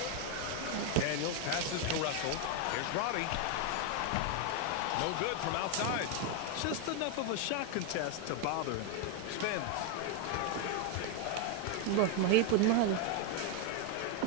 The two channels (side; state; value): both; different; correlation 0.01